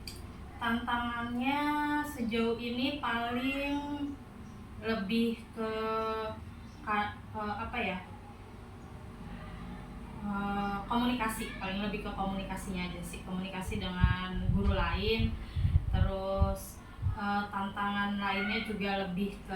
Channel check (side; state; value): both; identical; correlation 1.00